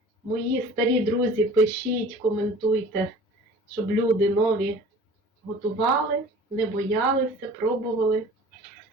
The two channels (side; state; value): both; normal; correlation 0.45